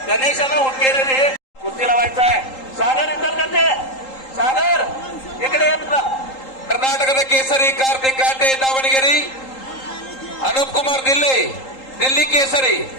गणेश हुक्केरी रे कुस्तीला व्हायचा आहे. सागर अंतर्गत सागर इकडे येत ना. ಕರ್ನಾಟಕದ ಕೇಸರಿ ಕಾರ್ತಿಕ್ ಕಾಟೆ ದಾವಣಗೆರೆ, ಅನೂಪ್ ಕುಮಾರ್ ದಿಲ್ಲಿ ಕೇಸರಿ,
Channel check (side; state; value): right; late; 3.8 ms